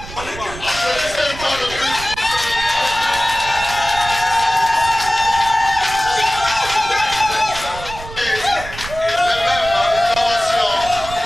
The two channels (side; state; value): right; noise; rumble, 13 dB below the sound